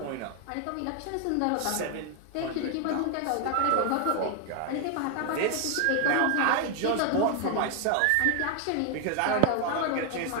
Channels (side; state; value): both; different; correlation 0.00